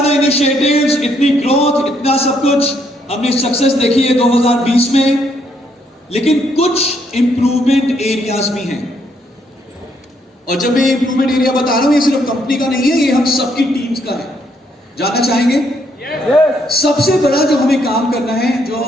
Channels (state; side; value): normal; both; correlation 0.72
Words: इनिशिएटिव्स, इतनी ग्रोथ, इतना सब कुछ हमने सक्सेस देखी है 2020 में, लेकिन कुछ इंप्रूवमेंट एरियाज भी हैं। और जब मैं इंप्रूवमेंट एरिया बता रहा हूं, ये सिर्फ कंपनी का नहीं है, ये हम सबकी टीम्स का है। जानना चाहेंगे? सबसे बड़ा जो हमें काम करना है, जो